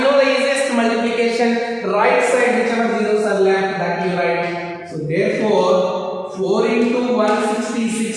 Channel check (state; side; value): identical; both; correlation 1.00